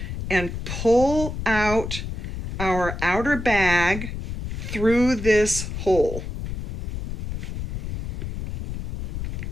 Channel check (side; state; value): left; noise; rumble, 6 dB below the sound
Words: and pull out our outer bag through this hole.